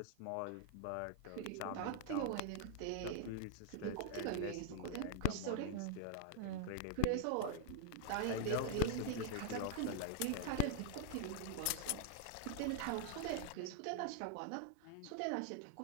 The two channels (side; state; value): both; different; correlation 0.00